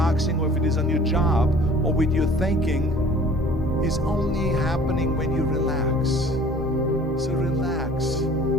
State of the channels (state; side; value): normal; both; correlation 0.49